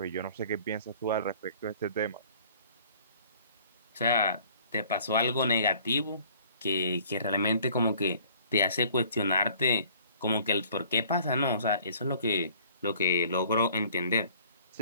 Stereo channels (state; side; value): inverted; both; correlation -0.54